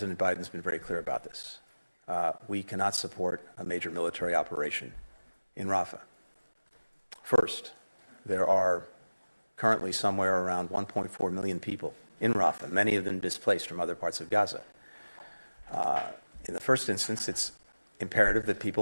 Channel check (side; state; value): both; inverted; correlation -1.00